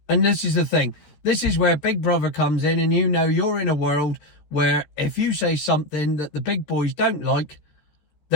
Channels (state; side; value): late; right; 13 ms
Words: And this is the thing. This is where Big Brother comes in, and you know you're in a world where if you say something that the big boys don't like,